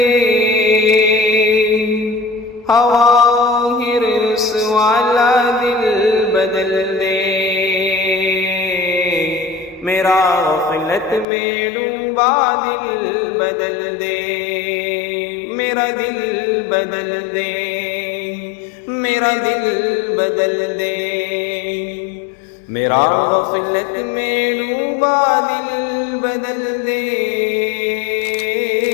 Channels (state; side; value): drops out; right; at 11.2 s